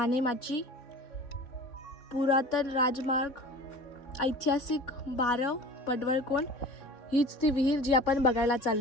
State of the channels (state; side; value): late; right; 3.5 ms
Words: पुरातन राजमार्ग, ऐतिहासिक बारव, पडवळकोंड. हीच ती विहीर जी आपण बघायला